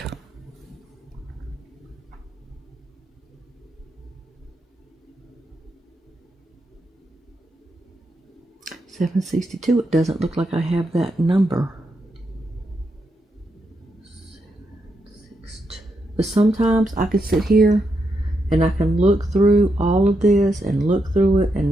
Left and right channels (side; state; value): both; normal; correlation 0.83